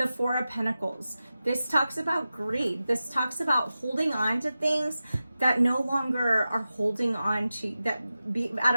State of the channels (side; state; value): both; inverted; correlation -0.93